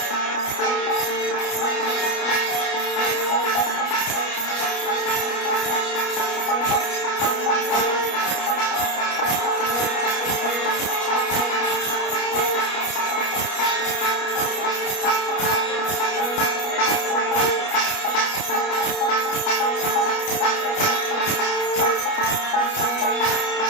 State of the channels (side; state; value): right; late; 29 ms